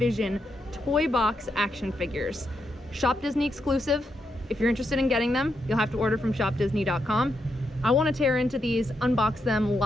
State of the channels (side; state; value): both; normal; correlation 0.82